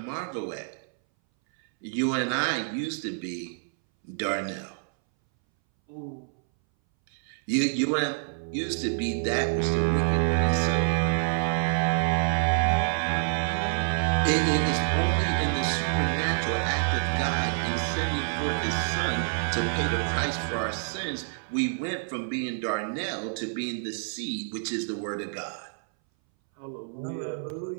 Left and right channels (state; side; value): silent; left; 60 dB below the other